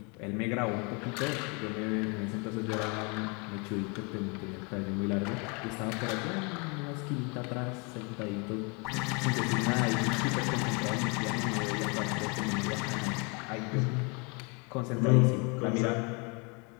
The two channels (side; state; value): right; quieter; 32.2 dB